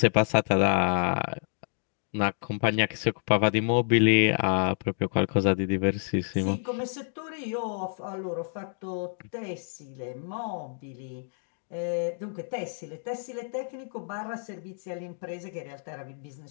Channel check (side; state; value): right; silent; digital silence